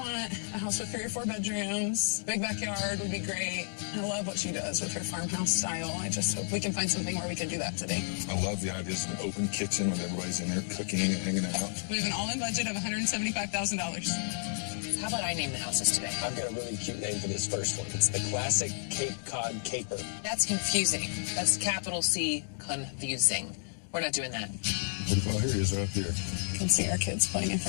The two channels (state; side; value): silent; right; digital silence